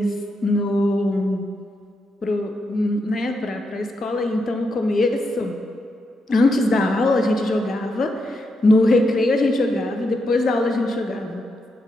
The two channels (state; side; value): normal; both; correlation 0.83